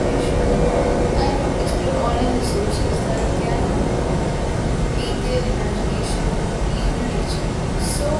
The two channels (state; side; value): identical; both; correlation 1.00